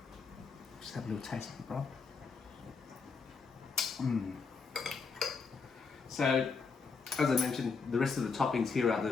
Just have a little taste of it, bro. So, as I mentioned, the rest of the toppings here are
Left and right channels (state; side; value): quieter; right; 5.0 dB